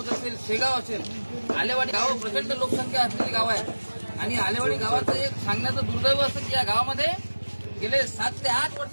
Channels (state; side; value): inverted; both; correlation -1.00